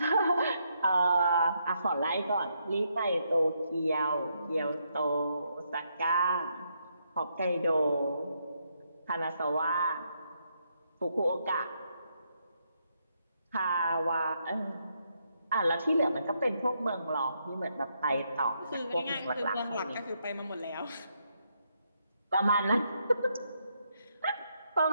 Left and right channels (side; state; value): both; inverted; correlation -0.77